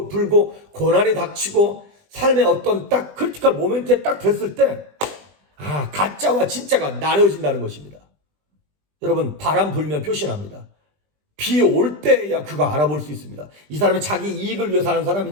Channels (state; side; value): late; left; 20 ms